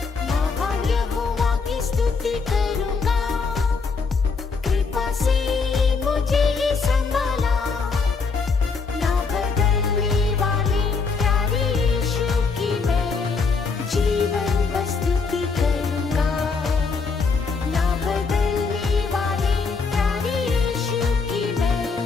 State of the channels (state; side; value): quieter; right; 4.8 dB